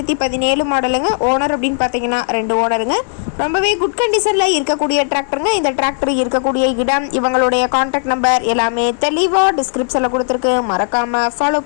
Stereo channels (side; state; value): right; silent; digital silence